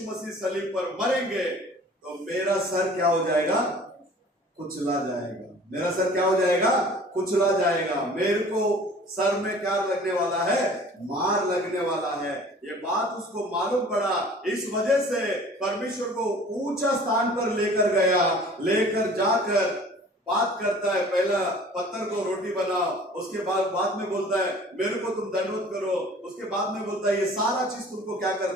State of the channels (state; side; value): normal; both; correlation 0.48